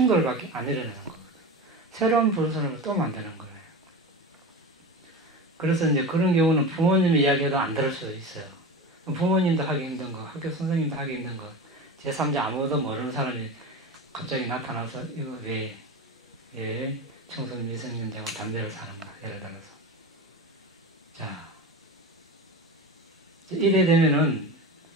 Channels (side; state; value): both; normal; correlation 0.27